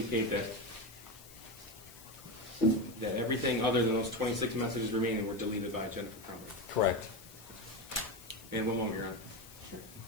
that everything other than those 26 messages remaining were deleted by Jennifer Crumbley. Correct. And one moment, you're on.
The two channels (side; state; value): left; noise; hiss, 19 dB below the sound